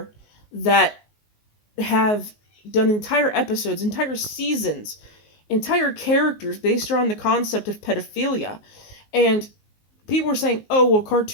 that have done entire episodes, entire seasons, entire characters based around the concept of pedophilia. And people were saying, oh, well,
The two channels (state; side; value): late; right; 19 ms